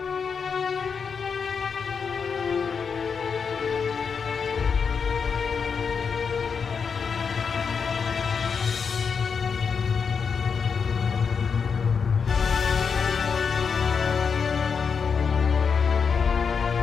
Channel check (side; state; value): right; quieter; 6.0 dB